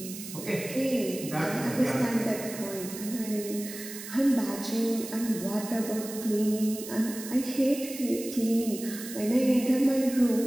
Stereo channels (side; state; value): right; noise; hiss, 11 dB below the sound